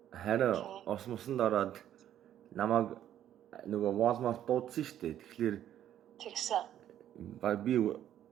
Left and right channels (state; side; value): quieter; left; 11.1 dB